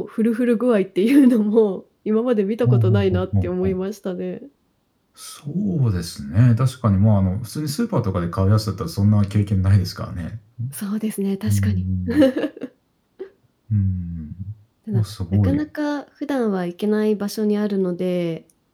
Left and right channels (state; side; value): identical; both; correlation 1.00